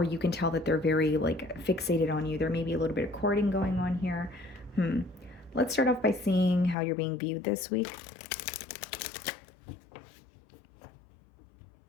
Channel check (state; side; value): drops out; right; at 6.8 s